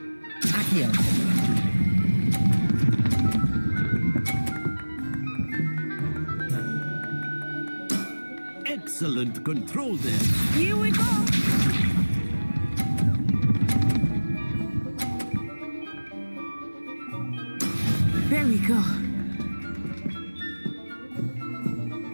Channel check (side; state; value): both; inverted; correlation -1.00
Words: Accio. Excellent control there. Here we go. There we go.